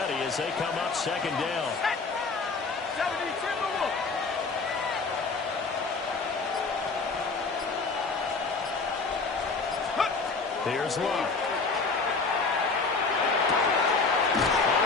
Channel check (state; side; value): quieter; right; 4.2 dB